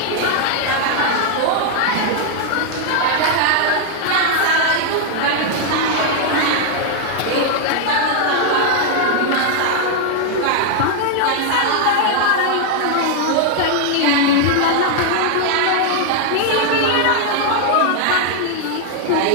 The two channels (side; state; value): both; different; correlation 0.00